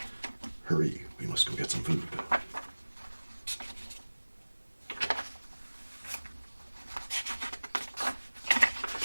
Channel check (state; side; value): inverted; both; correlation -1.00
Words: Hurry, we must go get some food.